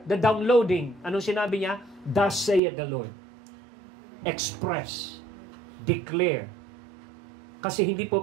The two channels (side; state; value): left; drops out; at 2.6 s